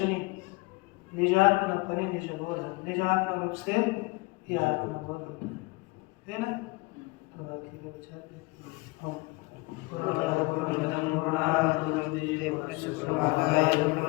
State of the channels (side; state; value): right; quieter; 24.5 dB